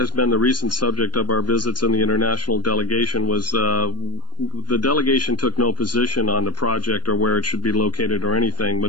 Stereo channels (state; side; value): late; right; 0.71 ms